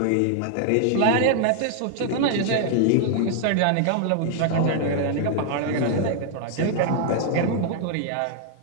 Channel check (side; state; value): both; different; correlation 0.00